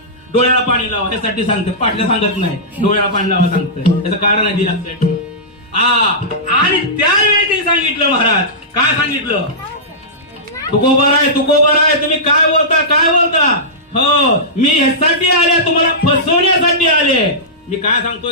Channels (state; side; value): normal; both; correlation -0.16